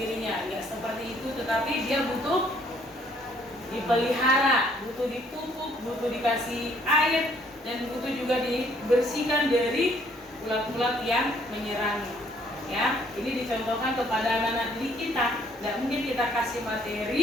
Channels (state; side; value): normal; both; correlation 0.64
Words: Ya, seperti itu, tetapi dia butuh dipelihara, butuh dipupuk, butuh dikasih air, dan butuh juga dibersihkan dari ulat-ulat yang menyerangnya. Ya, ini dicontohkan kepada anak-anak didik kita. Tidak mungkin kita kita kasih